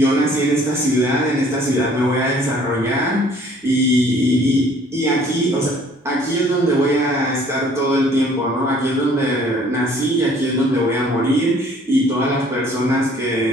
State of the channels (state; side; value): normal; both; correlation 0.56